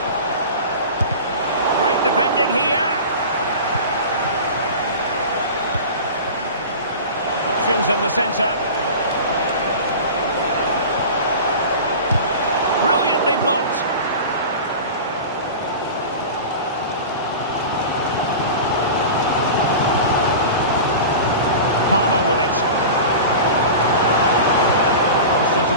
Great defending here. Options in the centre. Brilliantly blocked. Palmer with it. Crossed into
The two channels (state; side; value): inverted; both; correlation -0.33